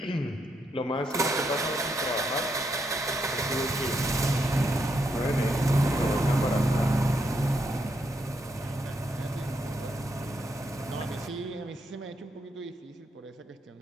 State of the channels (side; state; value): both; normal; correlation 0.80